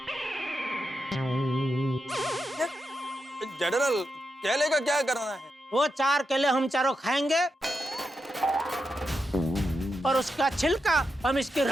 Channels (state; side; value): normal; both; correlation 0.86